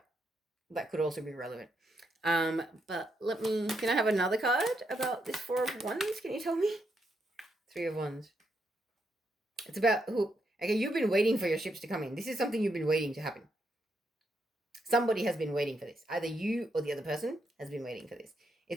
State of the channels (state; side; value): normal; both; correlation 0.80